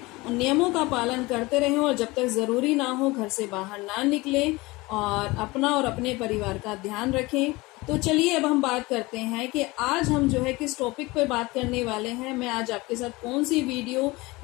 नियमों का पालन करते रहें। और जब तक जरूरी ना हो घर से बाहर ना निकलें और अपना और अपने परिवार का ध्यान रखें। तो चलिए अब हम बात करते हैं कि आज हम जो है किस टॉपिक पे बात करने वाले हैं। मैं आज आपके साथ कौन सी वीडियो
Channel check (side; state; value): right; quieter; 22.2 dB